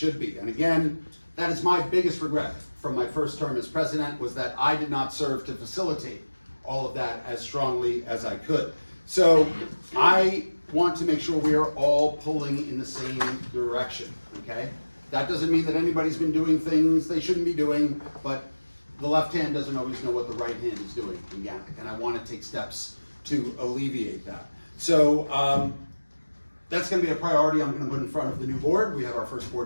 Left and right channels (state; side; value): inverted; both; correlation -1.00